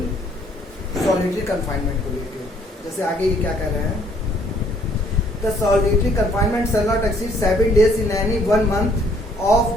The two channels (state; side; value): normal; both; correlation 0.63